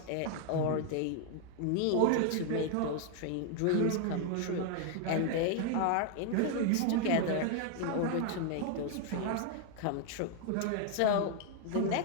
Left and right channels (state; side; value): different; both; correlation 0.00